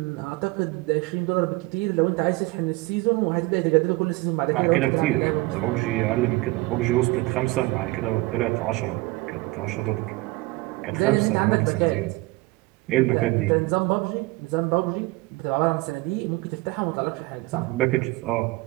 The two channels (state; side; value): quieter; left; 22.1 dB